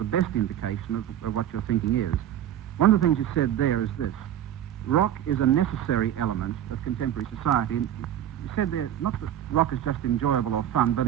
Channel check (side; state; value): left; quieter; 11.0 dB